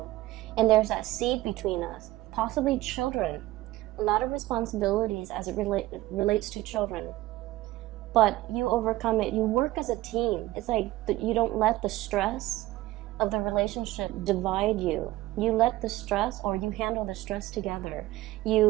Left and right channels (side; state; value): left; quieter; 17.2 dB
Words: and there's that seed between us. Possibly children, a lot of responsibilities as it relates to children, but you overcome it. You work as a team. It's like you don't let the stress of the relationship divide you. You let the stress, or you handle the stress together.